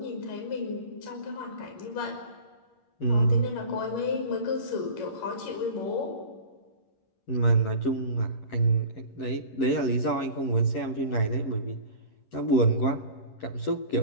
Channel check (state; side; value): late; right; 11 ms